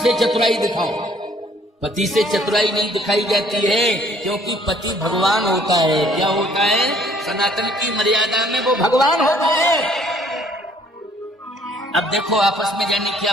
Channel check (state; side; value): normal; both; correlation 0.60